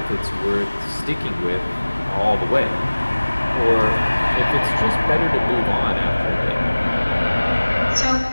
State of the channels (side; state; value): both; inverted; correlation -1.00